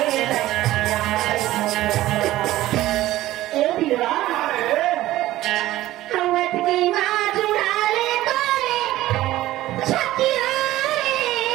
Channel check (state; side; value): quieter; left; 15.7 dB